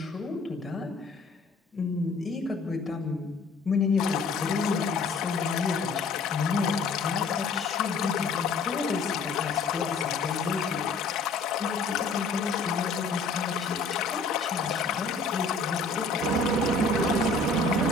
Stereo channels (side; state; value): right; quieter; 3.8 dB